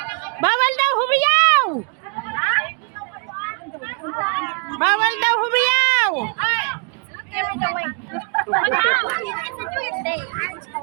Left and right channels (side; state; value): left; quieter; 38.4 dB